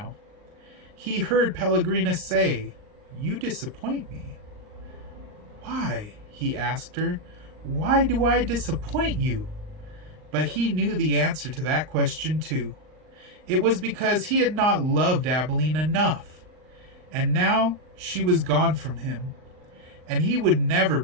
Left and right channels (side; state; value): left; late; 39 ms